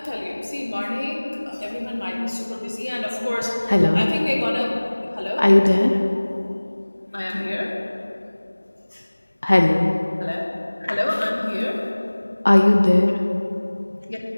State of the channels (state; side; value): inverted; both; correlation -1.00